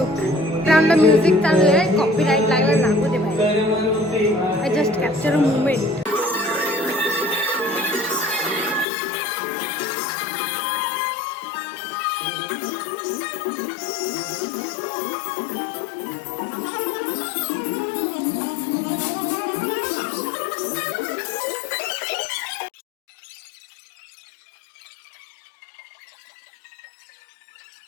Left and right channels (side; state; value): right; drops out; at 8.8 s